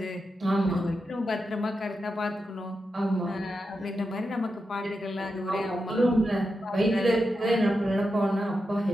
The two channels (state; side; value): normal; both; correlation 0.88